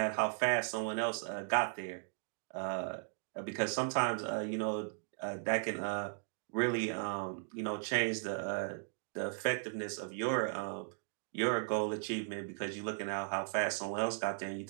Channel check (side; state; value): left; silent; digital silence